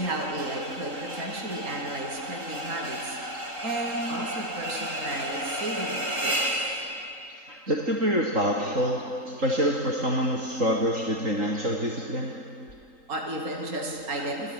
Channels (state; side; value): late; left; 3.8 ms